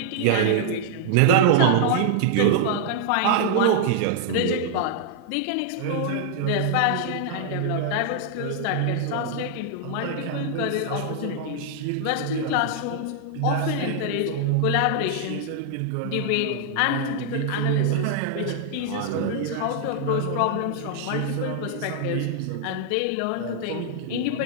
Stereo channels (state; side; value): different; both; correlation -0.01